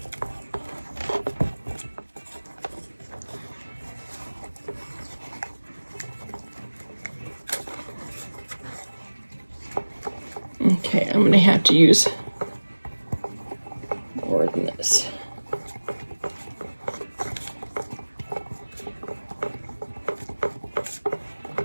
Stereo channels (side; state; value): both; inverted; correlation -1.00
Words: Okay, I'm going to have to use more than this.